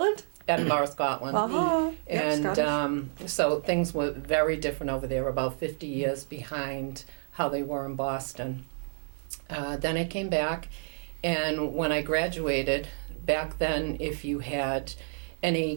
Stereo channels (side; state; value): left; silent; 58 dB below the other